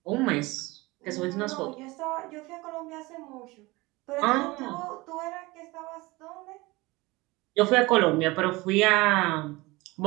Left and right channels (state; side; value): quieter; left; 22.2 dB